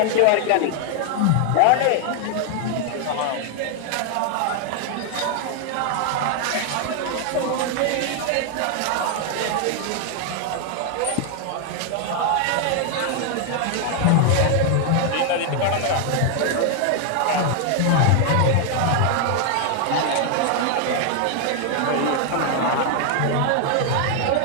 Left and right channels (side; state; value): both; different; correlation 0.00